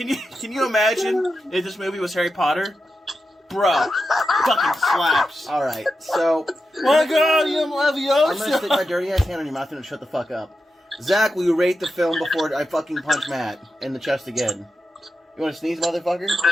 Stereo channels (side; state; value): both; normal; correlation 0.89